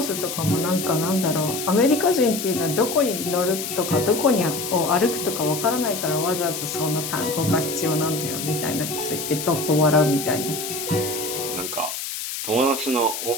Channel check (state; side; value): noise; left; hiss, 6 dB below the sound